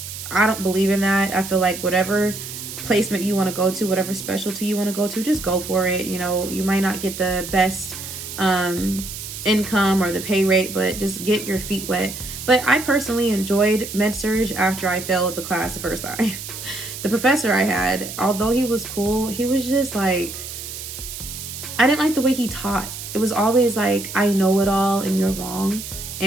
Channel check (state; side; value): noise; right; hiss, 9 dB below the sound